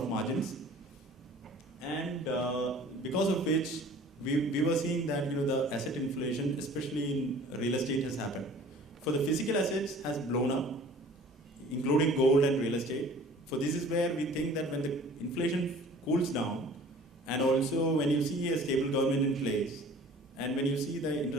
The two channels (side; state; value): both; normal; correlation 0.48